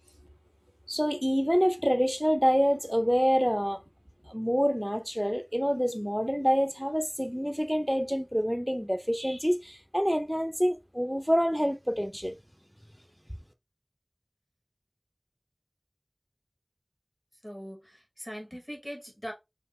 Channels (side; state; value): both; identical; correlation 1.00